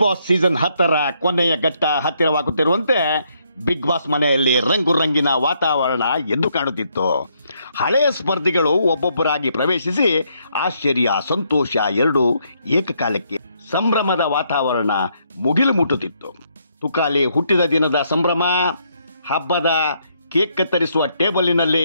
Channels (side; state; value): both; inverted; correlation -0.73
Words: ಬಾಸ್ ಸೀಸನ್ 10ರ ಕೊನೆಯ ಘಟ್ಟ ಹತ್ತಿರವಾಗುತ್ತಿರುವಂತೆ ಬಿಗ್ ಬಾಸ್ ಮನೆಯಲ್ಲಿ ರಂಗು ರಂಗಿನ ವಾತಾವರಣ ಎದ್ದು ಕಾಣುತ್ತಿತ್ತು. ಹಳೆಯ ಸ್ಪರ್ಧಿಗಳು ಒಬ್ಬೊಬ್ಬರಾಗಿ ಪ್ರವೇಶಿಸಿ ಆಶ್ಚರ್ಯ, ಸಂತೋಷ ಎರಡೂ ಏಕಕಾಲಕ್ಕೆ ಸಂಭ್ರಮದ ವಾತಾವರಣ ಮುಗಿಲು ಮುಟ್ಟುತ್ತಿತ್ತು. ತುಕಾಲಿ ಹುಟ್ಟಿದ ದಿನದ ಸಂಭ್ರಮ, ಹಬ್ಬದ ಕೇಕ್ ಕತ್ತರಿಸುವ ಟೇಬಲಿನಲ್ಲಿ